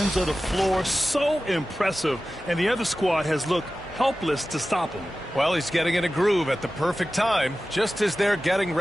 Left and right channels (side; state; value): both; normal; correlation 0.95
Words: of the floor. So impressive, and the other squad has looked helpless to stop him. Well, he's getting in a groove at the perfect time, just as they're getting